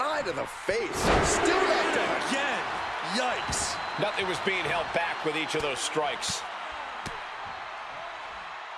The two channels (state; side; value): identical; both; correlation 1.00